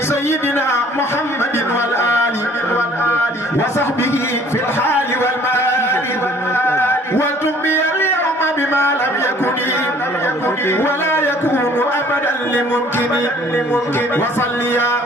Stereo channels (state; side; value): normal; both; correlation 0.55